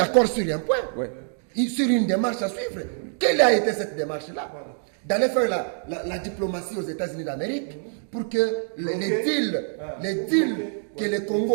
sur un point, sur une démarche à suivre. Quelle a été cette démarche-là? D'aller faire la diplomatie aux États-Unis d'Amérique pour que les deals que le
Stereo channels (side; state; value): left; silent; digital silence